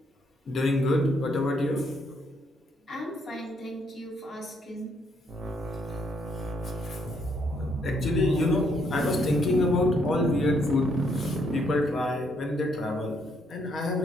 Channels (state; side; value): normal; both; correlation 0.72